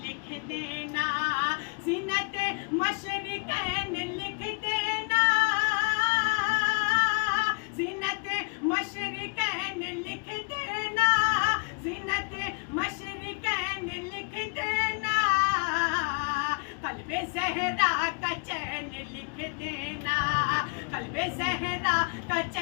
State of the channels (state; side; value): quieter; right; 37.0 dB